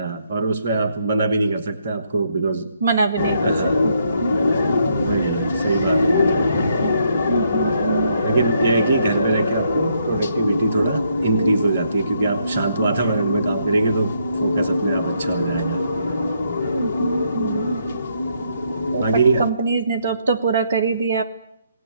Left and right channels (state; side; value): inverted; both; correlation -0.74